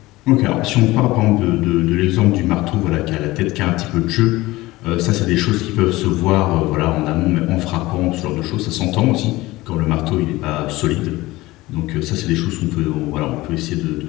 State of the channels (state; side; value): quieter; right; 19.2 dB